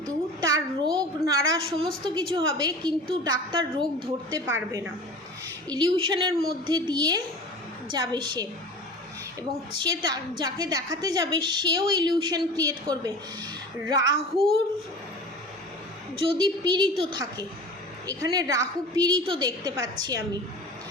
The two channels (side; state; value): both; normal; correlation 0.37